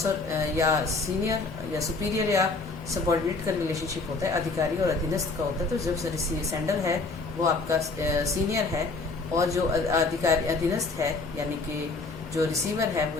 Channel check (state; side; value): quieter; right; 3.7 dB